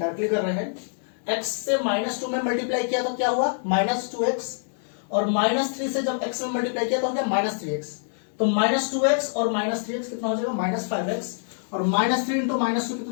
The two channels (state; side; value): silent; right; 61 dB below the other